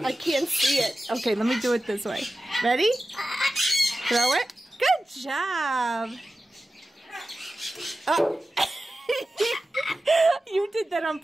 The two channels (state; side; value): normal; both; correlation 0.94